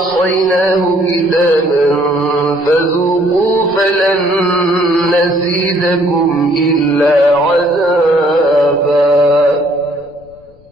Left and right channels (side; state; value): left; noise; rumble, 30 dB below the sound